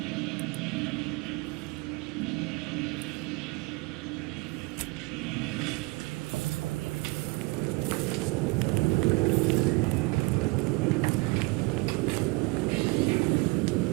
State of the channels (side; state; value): left; quieter; 25.8 dB